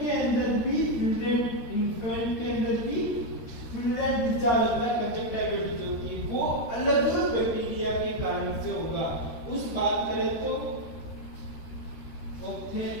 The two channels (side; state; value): right; late; 13 ms